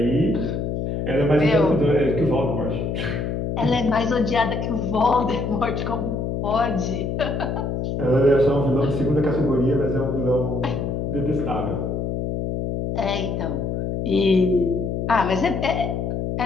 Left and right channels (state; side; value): noise; left; hum, 2 dB below the sound